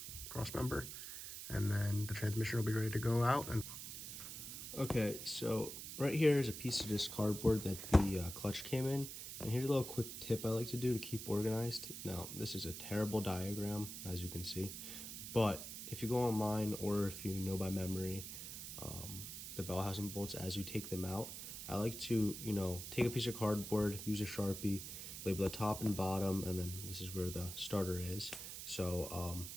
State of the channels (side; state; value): right; noise; hiss, 8 dB below the sound